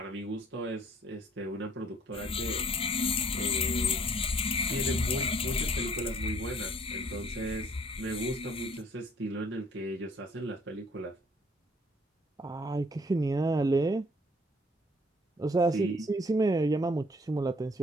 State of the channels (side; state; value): both; normal; correlation 0.59